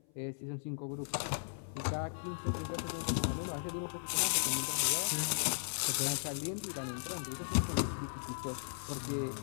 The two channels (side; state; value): right; silent; 53 dB below the other